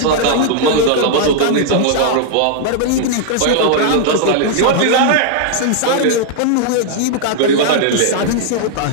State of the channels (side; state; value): both; different; correlation -0.01